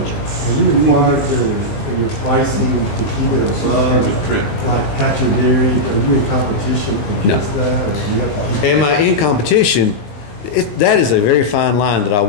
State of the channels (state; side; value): late; right; 19 ms